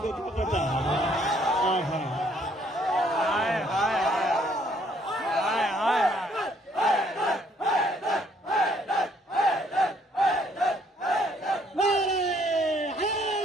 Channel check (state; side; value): normal; both; correlation 0.65